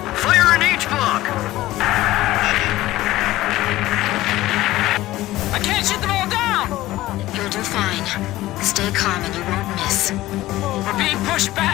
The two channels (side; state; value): right; quieter; 16.5 dB